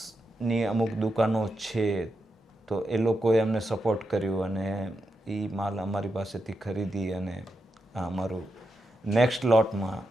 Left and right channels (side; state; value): both; normal; correlation 0.86